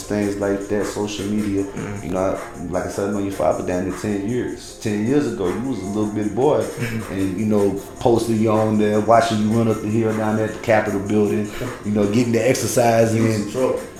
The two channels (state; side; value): identical; both; correlation 1.00